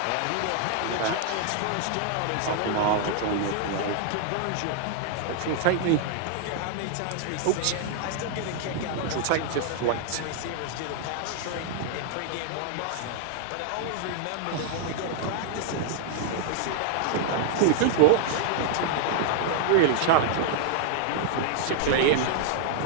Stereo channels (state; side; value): different; both; correlation -0.01